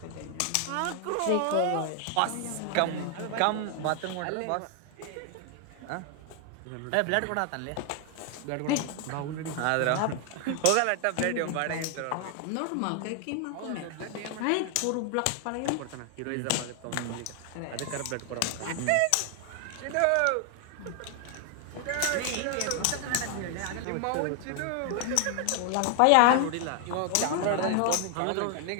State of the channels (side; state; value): both; different; correlation 0.00